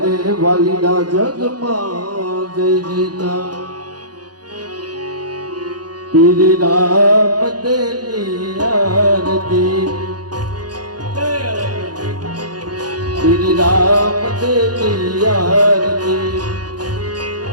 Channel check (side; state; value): left; late; 0.69 ms